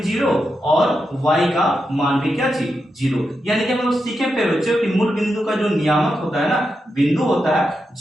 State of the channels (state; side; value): normal; both; correlation 0.87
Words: और वाई का मान भी क्या चीज, जीरो। यानी कि हम लोग सीखे पे बच्चों कि मूल बिंदु का जो नियामक होता है ना, बिंदु होता है